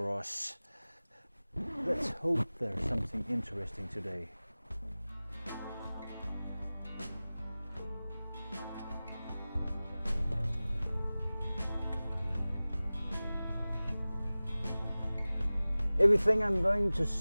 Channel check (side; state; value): both; inverted; correlation -0.98